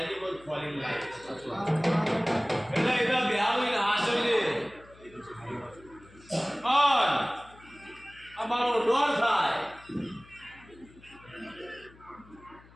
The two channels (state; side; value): noise; left; hum, 24 dB below the sound